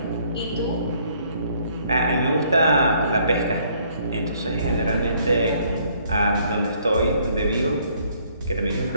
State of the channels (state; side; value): inverted; both; correlation -0.65